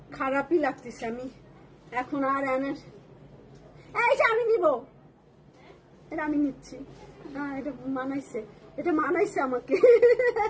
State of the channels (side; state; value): both; identical; correlation 1.00